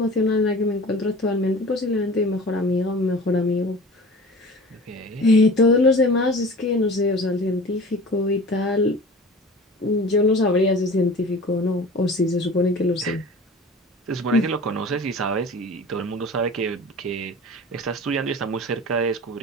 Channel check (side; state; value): both; normal; correlation 0.39